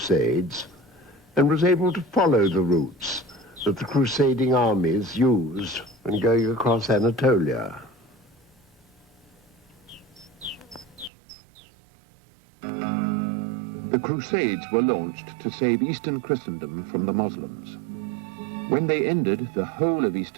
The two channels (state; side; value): drops out; left; at 11.1 s